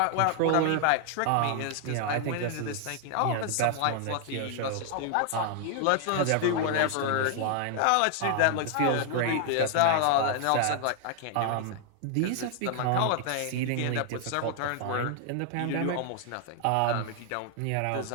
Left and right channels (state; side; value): different; both; correlation 0.00